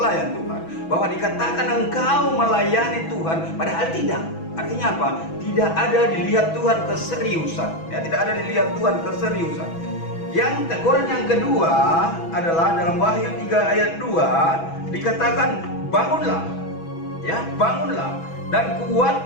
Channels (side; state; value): right; late; 6.1 ms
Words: Tuhan bahwa dikatakan engkau melayani Tuhan padahal tidak, artinya apa? Tidak ada dilihat Tuhan keseriusan, ya, tidak ada dilihat Tuhan keseriusan. Yang teguran yang kedua adalah dalam Wahyu 3 ayat 2 dikatakan bangunlah, ya, bangunlah dan